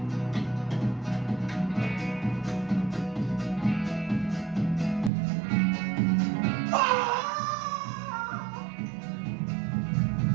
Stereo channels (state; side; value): drops out; left; at 5.1 s